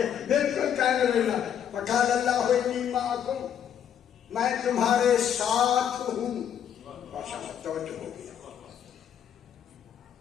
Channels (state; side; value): quieter; right; 9.1 dB